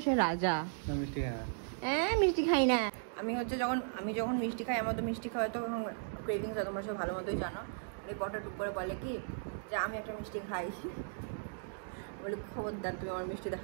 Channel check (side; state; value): left; silent; digital silence